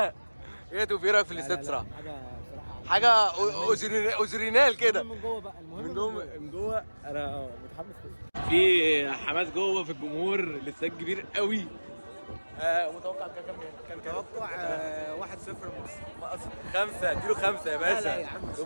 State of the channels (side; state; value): both; inverted; correlation -1.00